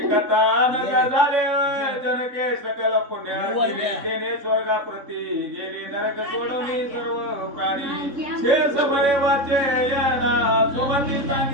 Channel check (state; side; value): late; left; 3.6 ms